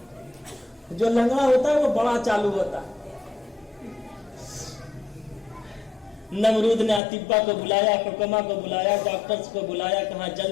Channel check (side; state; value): right; drops out; at 7.0 s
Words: जो लंगड़ा होता है वो बड़ा चालू होता है। नमरूद ने अतिब्बा को बुलाया, हुक्मा को बुलाया, डॉक्टर्स को बुलाया, कहा